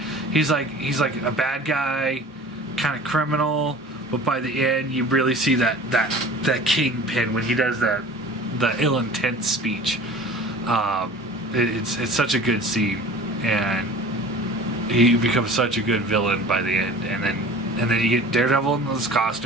he's like a bad guy, kind of criminal, but by the end you really see that Kingpin when he does the ill intent speech. It's such a good scene, and he becomes such a good villain by the end. And then you get Daredevil in his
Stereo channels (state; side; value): normal; both; correlation 0.42